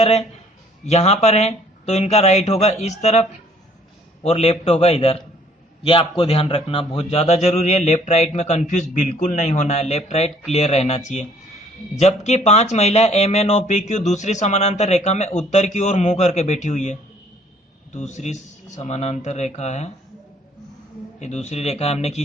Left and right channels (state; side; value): normal; both; correlation 0.60